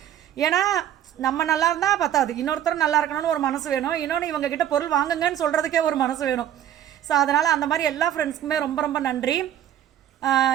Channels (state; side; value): quieter; left; 10.9 dB